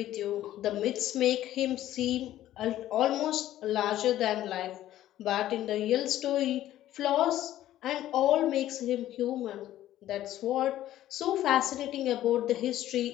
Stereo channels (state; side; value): quieter; right; 13.4 dB